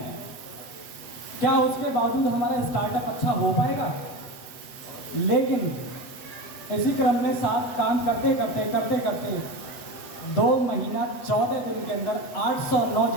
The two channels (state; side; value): late; right; 8.0 ms